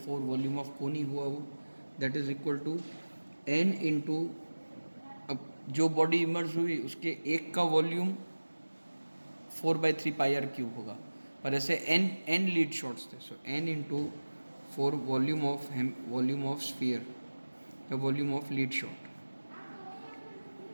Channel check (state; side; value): inverted; both; correlation -1.00